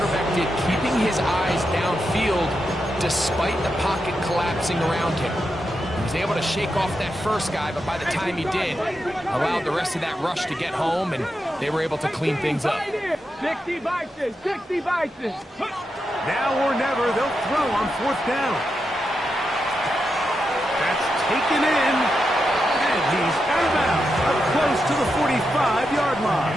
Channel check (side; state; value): both; normal; correlation 0.87